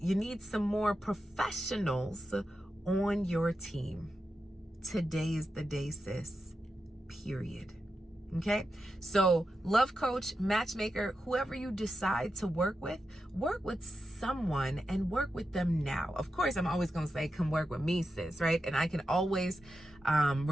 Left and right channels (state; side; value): normal; both; correlation 0.88